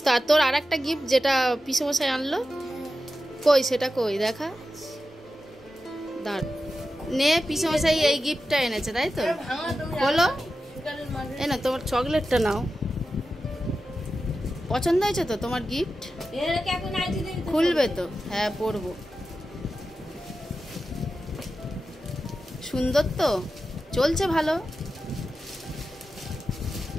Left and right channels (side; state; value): both; normal; correlation 0.91